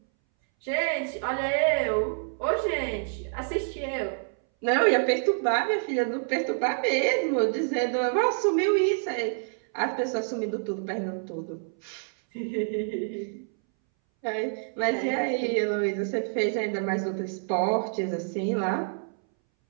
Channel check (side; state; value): left; silent; 60 dB below the other